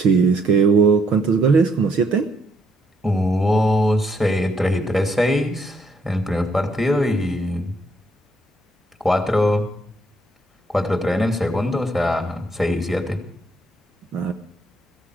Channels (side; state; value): both; normal; correlation 0.72